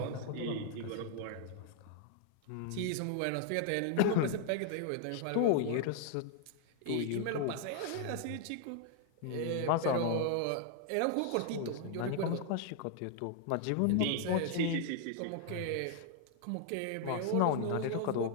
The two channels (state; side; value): different; both; correlation 0.00